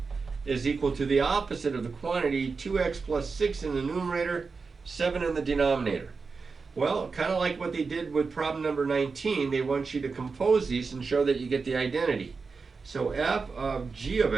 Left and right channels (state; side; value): quieter; left; 4.7 dB